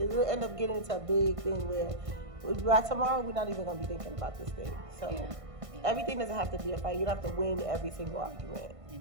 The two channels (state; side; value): late; left; 1.5 ms